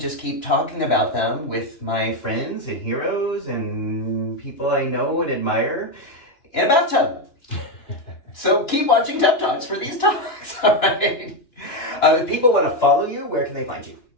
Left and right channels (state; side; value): late; right; 2.9 ms